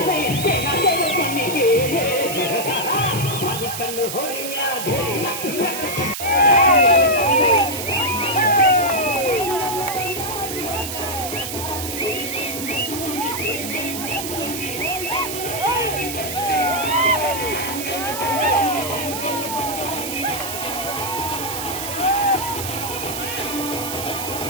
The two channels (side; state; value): right; noise; hiss, 6 dB below the sound